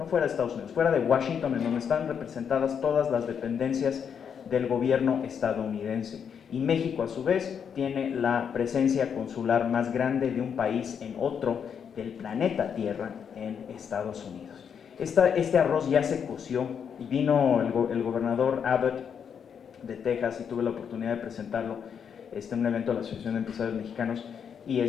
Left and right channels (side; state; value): right; quieter; 7.4 dB